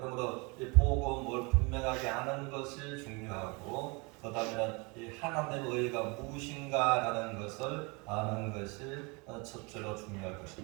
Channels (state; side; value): quieter; left; 29.0 dB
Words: 이 복음을 분명하게 아는 것이 중요하고 그 다음에는 이 하나님의 의가 무엇인가라는 것을 아는 것이 첫째로 중요할